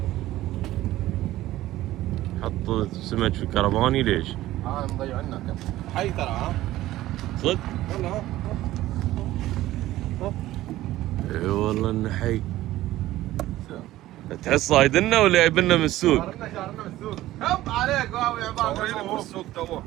حط سمك في كرفاني ليش؟ مضيع عنك. حي ترى صدق؟ والله اي والله انه حي. تحس صايدنا ولا جايبنا من السوق؟ شارنا من السوق. هب عليك واو يا عباد. من السوق توه.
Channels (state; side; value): quieter; left; 15.5 dB